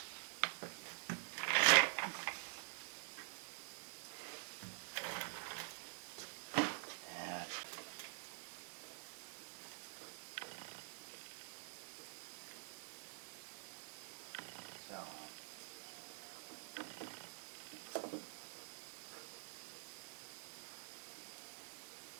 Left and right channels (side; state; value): left; silent; digital silence